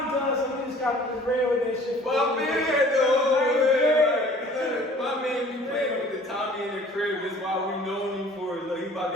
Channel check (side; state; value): both; normal; correlation 0.50